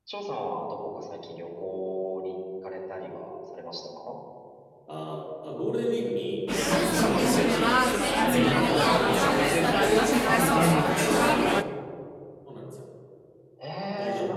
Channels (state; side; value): identical; both; correlation 1.00